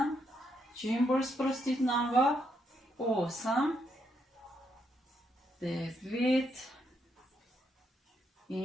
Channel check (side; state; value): both; normal; correlation 0.77